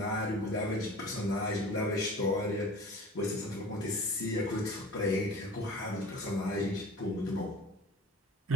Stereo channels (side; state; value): both; normal; correlation 0.41